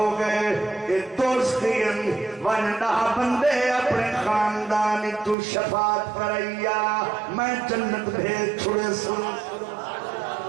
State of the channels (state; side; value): drops out; left; at 5.4 s